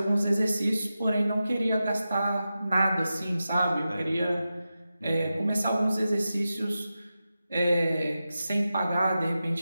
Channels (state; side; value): inverted; both; correlation -0.92